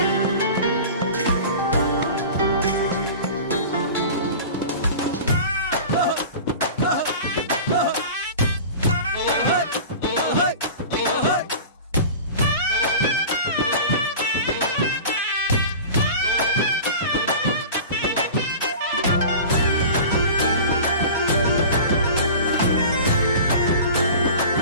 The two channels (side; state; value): both; inverted; correlation -0.36